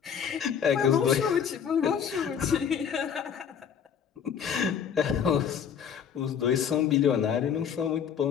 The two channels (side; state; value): right; quieter; 7.8 dB